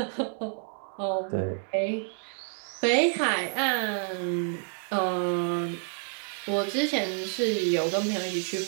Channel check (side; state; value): left; silent; 59 dB below the other